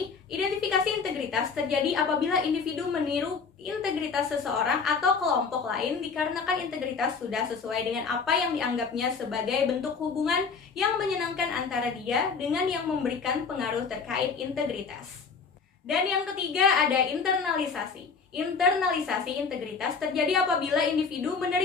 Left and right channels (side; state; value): right; quieter; 5.3 dB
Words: Identifikasi integritas terjadi apabila individu meniru integritas seseorang atau kelompok lain dikarenakan integritas sudah sesuai dengan apa yang dianggapnya sebagai bentuk hubungan yang menyenangkan antara dia dengan yang memberikan pengaruh terkait integritas. Dan yang ketiga ada internalisasi. Internalisasi integritas terjadi apabila individu